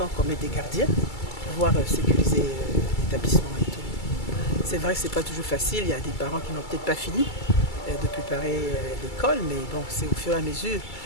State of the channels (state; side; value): late; right; 2.3 ms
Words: qu'on mette des gardiens pour pouvoir sécuriser l'établissement et tout. C'est vrai que ce n'est pas toujours facile, il y a des parents qui n'ont peut-être pas fini de préparer l'école, mais bon, c'est au fur et à mesure